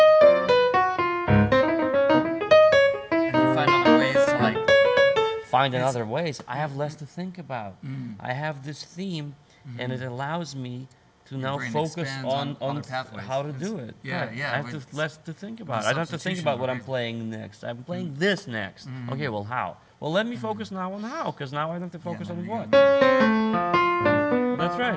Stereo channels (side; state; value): both; identical; correlation 1.00